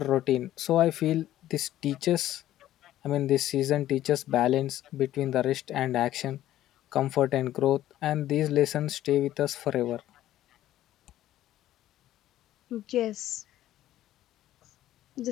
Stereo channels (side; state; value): right; quieter; 13.4 dB